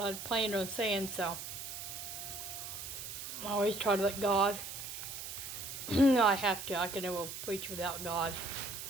planned on saying. So I always try to let God. I have to. I can never preach without God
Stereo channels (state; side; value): noise; right; hiss, 8 dB below the sound